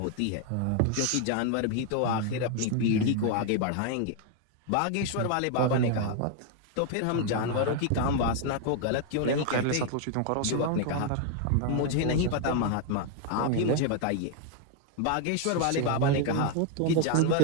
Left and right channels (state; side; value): different; both; correlation 0.01